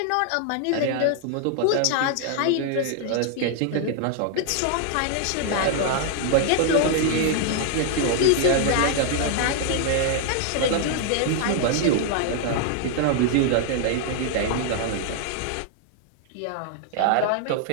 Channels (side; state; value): both; different; correlation 0.00